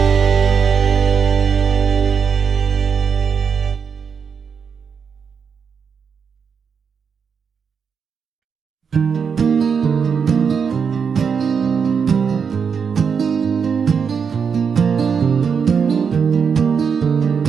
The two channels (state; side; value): quieter; left; 6.4 dB